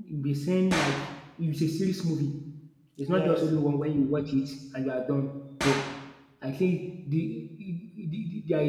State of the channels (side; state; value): both; identical; correlation 1.00